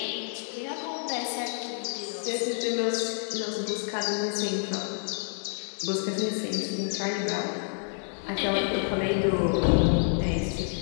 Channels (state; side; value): silent; right; 59 dB below the other